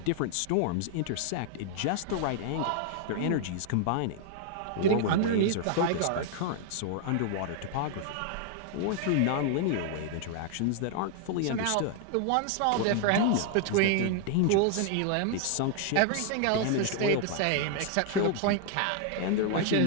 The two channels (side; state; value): both; different; correlation 0.00